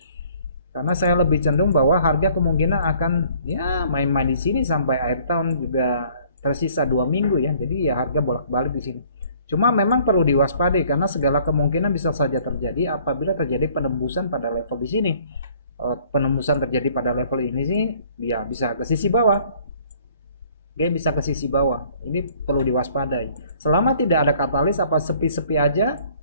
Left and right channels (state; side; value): inverted; both; correlation -0.57